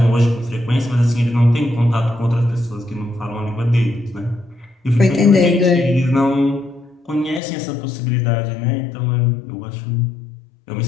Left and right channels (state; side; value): drops out; right; at 7.4 s